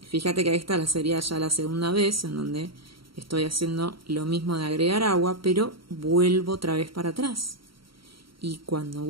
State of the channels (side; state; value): left; late; 0.74 ms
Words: Fíjate que esta sería ya la segunda vez en donde estoy haciendo lo mismo de agregar agua, pero vuelvo otra vez para atrás. Y cuando